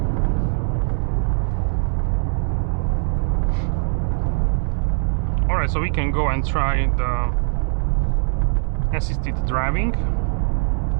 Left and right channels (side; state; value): left; silent; 65 dB below the other